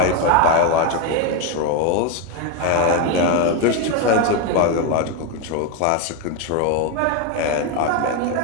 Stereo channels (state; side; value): different; both; correlation 0.02